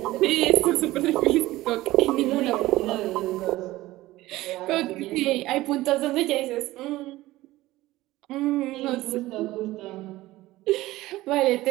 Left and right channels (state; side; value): quieter; left; 17.4 dB